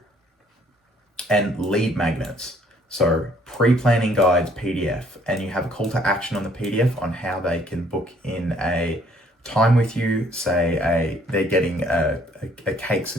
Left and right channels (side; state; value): both; normal; correlation 0.62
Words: And lead magnets. So pre-planning guides PDF, and you have a call to action on the PDF on how they can book in a time with you. Say they're getting a cakes